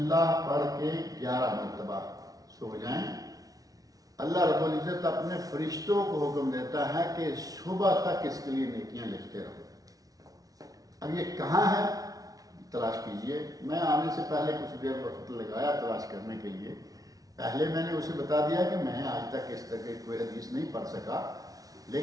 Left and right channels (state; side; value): late; left; 0.18 ms